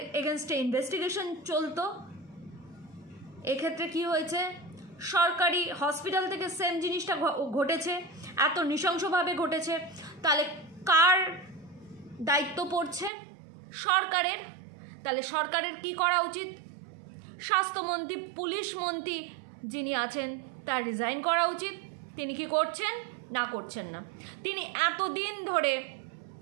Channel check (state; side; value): drops out; left; at 13.1 s